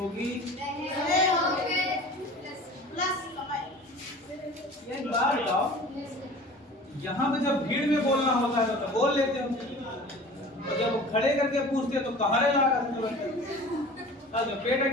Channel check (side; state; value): both; normal; correlation 0.41